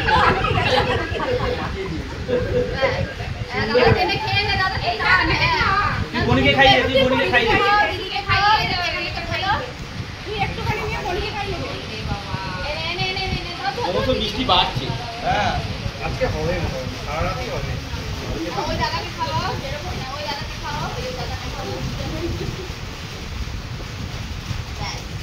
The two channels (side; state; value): both; identical; correlation 1.00